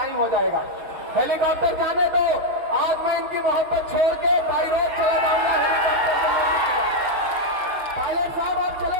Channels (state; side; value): late; left; 5.9 ms